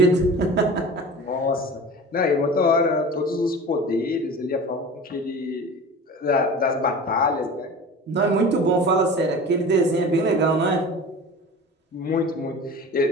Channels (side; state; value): both; normal; correlation 0.36